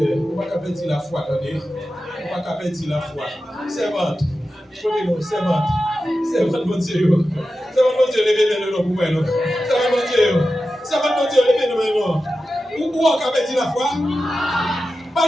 on va capéti la foi, attendez. On va capéti la foi. Servante, servante, servante, mon Dieu. Servante, mon Dieu, levez le nom pour moi. Servante, mon Dieu. Servante, mon Dieu, levez le nom. Où on capéti la foi? Pas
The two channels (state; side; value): normal; both; correlation 0.92